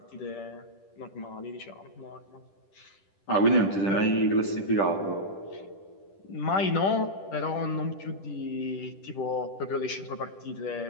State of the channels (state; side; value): late; right; 10 ms